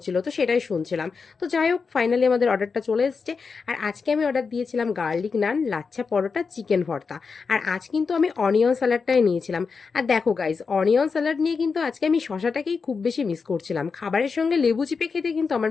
তো সেটাই শুনছিলাম। তো যাই হোক, ফাইনালি আমাদের অর্ডারটা চলে এসছে। আর আজকে আমি অর্ডার দিয়েছিলাম গার্লিক নান, লাচ্ছা পরোটা, চিকেন ভর্তা। আর আজ কিন্তু আমি অনিয়ন স্যালাডটাই নিয়েছিলাম। আর দেখো গাইজ, অনিয়ন স্যালাড নিয়ে কিন্তু আজকে আমি শশাটাকেই খুব বেশি মিস করছিলাম। খাবারের সঙ্গে লেবু চিপে খেতে কিন্তু আমার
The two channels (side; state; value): right; quieter; 5.1 dB